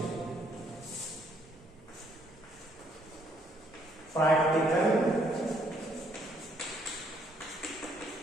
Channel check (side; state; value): both; normal; correlation 0.68